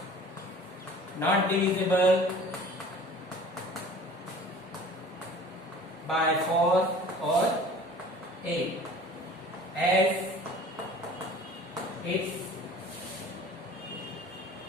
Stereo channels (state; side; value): normal; both; correlation 0.45